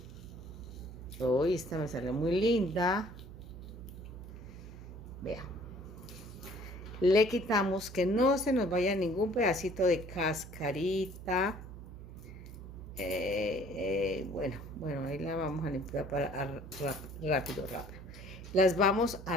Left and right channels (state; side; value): noise; right; hum, 13 dB below the sound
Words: Hoy esta me salió muy linda. Vea. Le quitamos que no se nos vaya ningún pedacito de cascarita. Bueno, ahí la vamos a limpiar para rápido. Las vamos